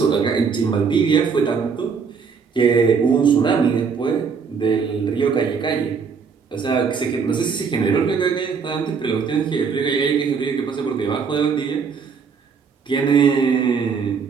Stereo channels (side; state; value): left; quieter; 5.8 dB